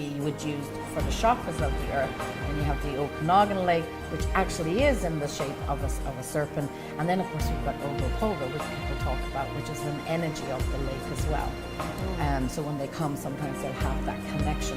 would use for the chakras of the earth. And you have the Okanagan Lake, which actually is in the shape of a serpent. And then, of course, we've got Ogopogo, which people talk about, which is an energy of the lake as well. So when they come, sometimes they'll have that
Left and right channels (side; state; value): both; identical; correlation 1.00